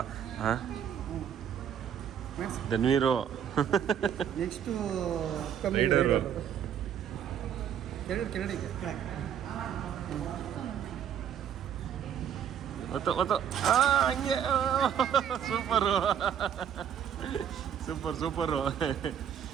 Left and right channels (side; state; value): left; quieter; 8.9 dB